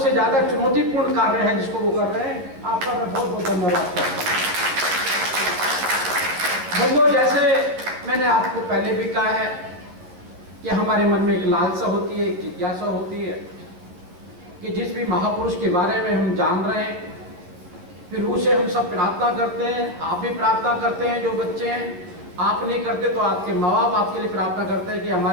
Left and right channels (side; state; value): left; late; 11 ms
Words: ज़्यादा चुनौतीपूर्ण कार्य है जिसको वो कर रहे हैं। आपका मैं बहुत बहुत धन्यवाद करता हूँ। बंधुओं, जैसे मैंने आपको पहले भी कहा है कि हमारे मन में एक लालसा होती है, एक जिज्ञासा होती है कि जिस भी महापुरुष के बारे में हम जान रहे हैं, फिर उसे हम सब प्रार्थना करते हैं। आप भी प्रार्थना करते हैं, जो बच्चे हैं। आप नहीं करते तो आपके माँ बाप आपके लिए प्रार्थना करते हैं कि